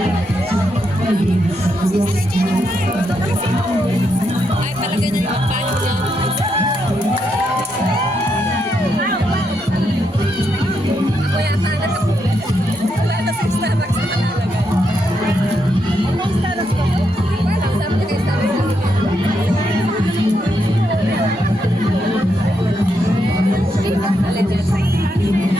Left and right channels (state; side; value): normal; both; correlation 0.80